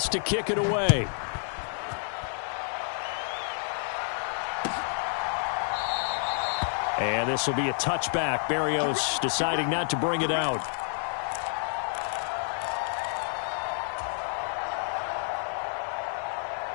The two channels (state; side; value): silent; right; digital silence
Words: to kick it away. And this will be a touchback. Berrios deciding not to bring it out.